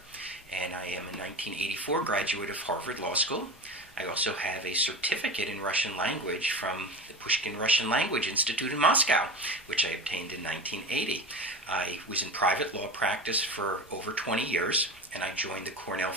And I am a 1984 graduate of Harvard Law School. I also have a certificate in Russian language from the Pushkin Russian Language Institute in Moscow, which I obtained in 1980. I was in private law practice for over 20 years, and I joined the Cornell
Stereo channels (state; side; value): normal; both; correlation 0.27